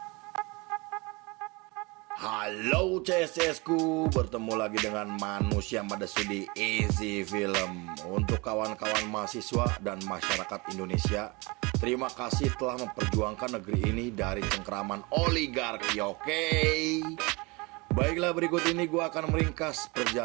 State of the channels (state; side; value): quieter; left; 26.6 dB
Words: Halo CSS-ku, bertemu lagi dengan manusia pada studi Easy Film. Untuk kawan-kawan mahasiswa dan masyarakat Indonesia, terima kasih telah memperjuangkan negeri ini dari cengkeraman oligarki, oke? Baiklah, berikut ini gue akan meringkas